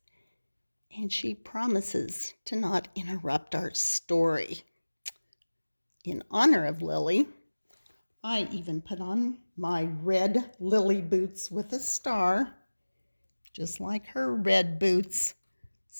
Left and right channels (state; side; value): inverted; both; correlation -1.00